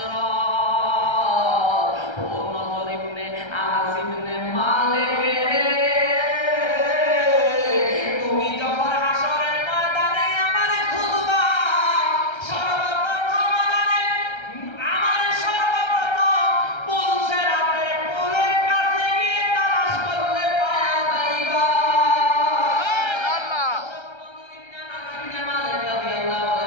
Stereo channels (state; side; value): late; right; 1.3 ms